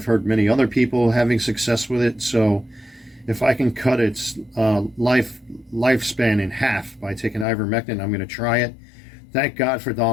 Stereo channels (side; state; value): right; drops out; at 7.5 s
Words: heard many other people having success with it. So if I can cut its lifespan in half by taking ivermectin, I'm going to try it. Thank God for